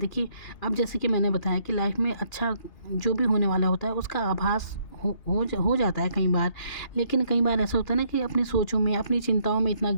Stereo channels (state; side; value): late; right; 2.9 ms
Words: अब जैसे कि मैंने बताया कि लाइफ में अच्छा जो भी होने वाला होता है, उसका आभास हो जाता है कई बार। लेकिन कई बार ऐसा होता है ना कि अपनी सोचों में, अपनी चिंताओं में इतना